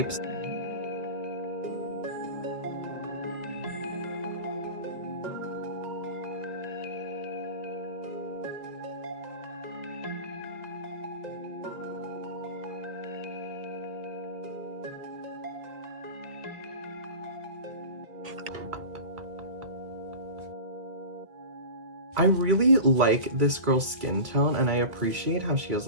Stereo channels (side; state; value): left; late; 1.8 ms